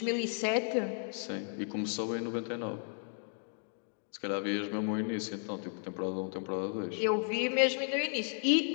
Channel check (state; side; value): silent; right; 55 dB below the other